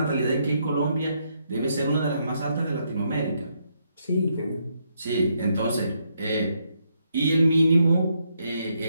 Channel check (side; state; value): both; inverted; correlation -0.76